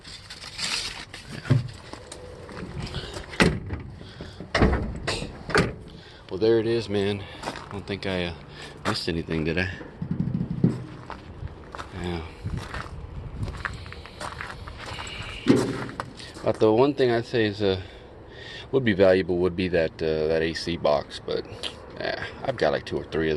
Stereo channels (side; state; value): both; identical; correlation 1.00